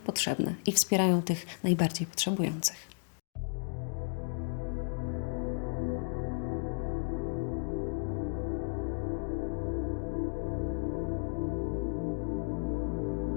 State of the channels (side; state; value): right; silent; digital silence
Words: i wspierają tych najbardziej potrzebujących.